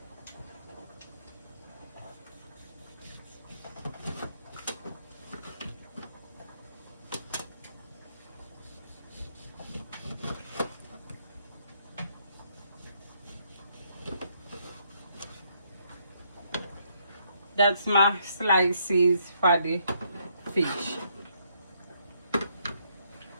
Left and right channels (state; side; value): inverted; both; correlation -0.72